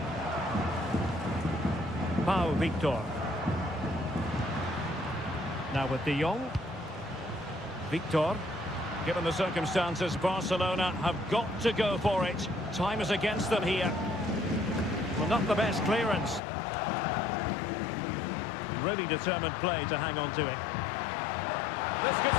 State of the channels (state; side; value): drops out; right; at 16.4 s